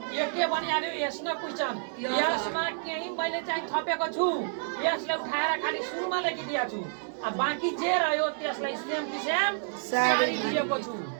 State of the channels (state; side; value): silent; left; digital silence